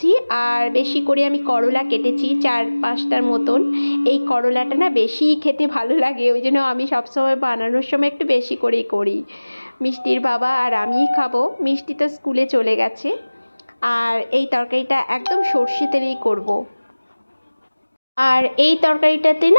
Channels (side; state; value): both; inverted; correlation -1.00